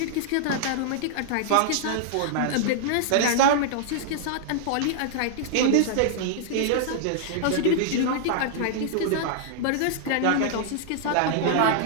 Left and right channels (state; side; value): different; both; correlation -0.01